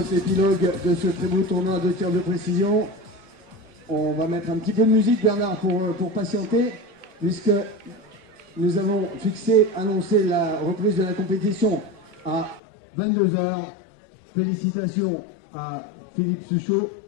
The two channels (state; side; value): drops out; right; at 12.6 s